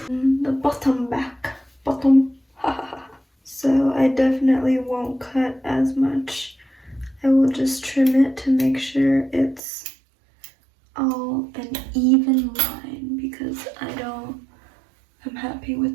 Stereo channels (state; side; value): drops out; left; at 9.6 s